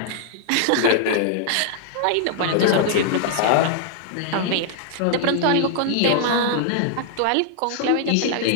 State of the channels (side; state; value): both; different; correlation -0.01